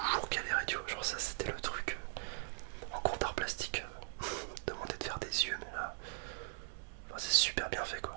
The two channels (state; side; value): quieter; left; 34.4 dB